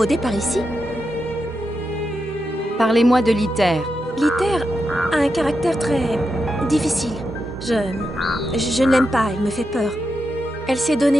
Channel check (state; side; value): normal; both; correlation 0.86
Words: par ici? Parlez-moi de Liter. Liter a un caractère très difficile. Je ne l'aime pas, elle me fait peur. Elle s'est